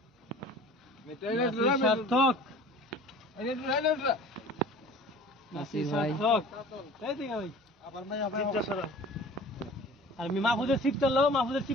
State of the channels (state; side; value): normal; both; correlation 0.44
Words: সার্থক নাসির ভাই চিপটা সরা। আর মাহফুজের সিপটা লো, মাহফুজের